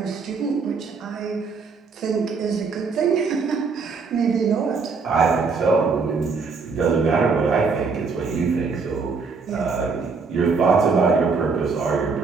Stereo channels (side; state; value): left; quieter; 4.8 dB